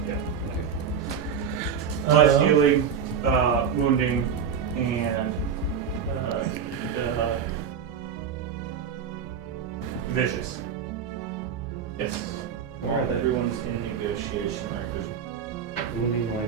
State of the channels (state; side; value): quieter; left; 7.3 dB